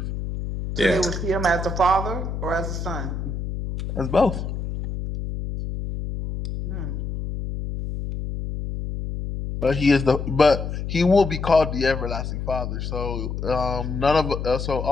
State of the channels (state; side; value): noise; left; hum, 5 dB below the sound